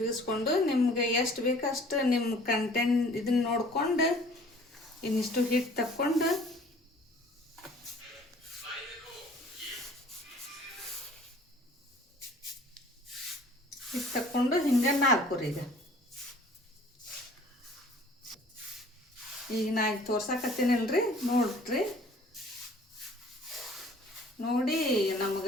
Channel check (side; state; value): both; normal; correlation 0.51